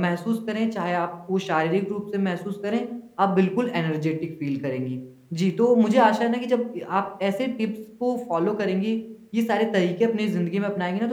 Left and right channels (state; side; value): identical; both; correlation 1.00